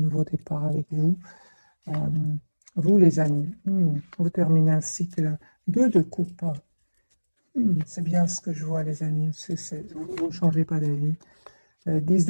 départ avec vous. Vous, les amis, vous terminez un cycle 2 de coupe. C'est bien ce que je vois, les amis. Vous ne changez pas d'avis. 10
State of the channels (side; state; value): both; inverted; correlation -1.00